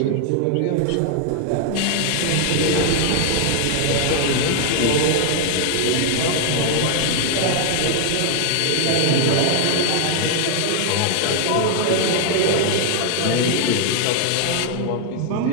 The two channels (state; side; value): different; both; correlation 0.00